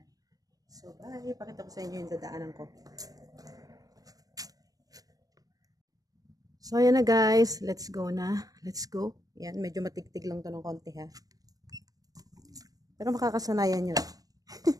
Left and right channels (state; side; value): late; left; 0.18 ms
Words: So, bye! Pakita ko sa inyo yung dadaanan ko. So, ayan na guys. Let's go na. Let's go. Ayan, medyo matigtig lang to ng konti ha. Pero makakasanayan nyo.